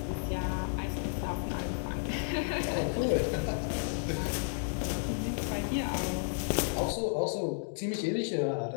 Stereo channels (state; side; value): silent; right; digital silence